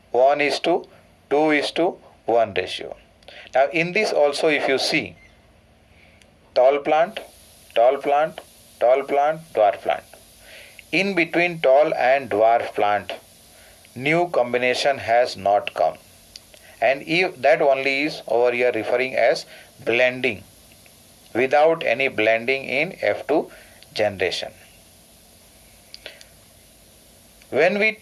1:2:1 ratio. Now in this also, if you see, tall plant, dwarf plant. In between tall and dwarf plant, new combination has not come, and if that only is over here referring as blending, without any blending in F2 generation. When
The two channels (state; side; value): identical; both; correlation 1.00